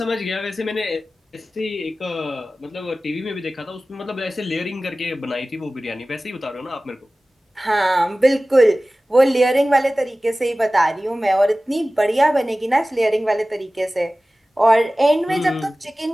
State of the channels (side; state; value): both; normal; correlation 0.97